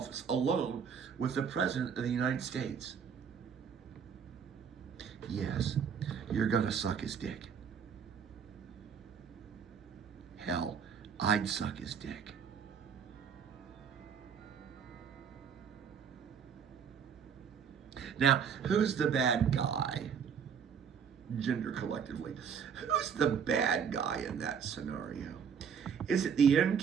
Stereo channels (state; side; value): quieter; left; 7.1 dB